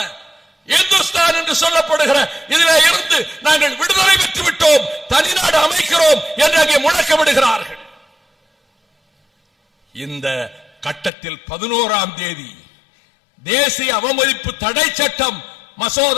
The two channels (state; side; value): drops out; right; at 11.1 s